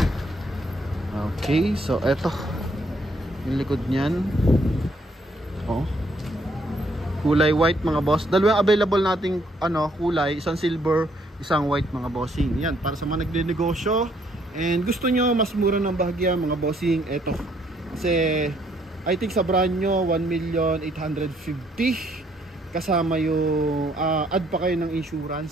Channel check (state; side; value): normal; both; correlation 0.68